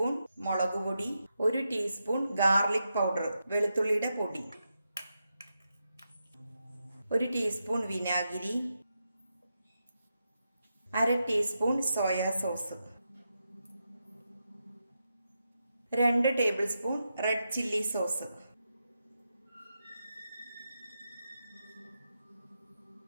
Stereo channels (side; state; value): both; inverted; correlation -0.86